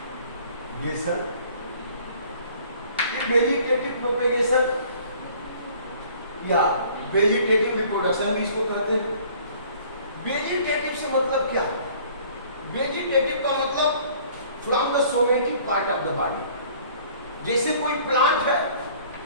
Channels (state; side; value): inverted; both; correlation -0.53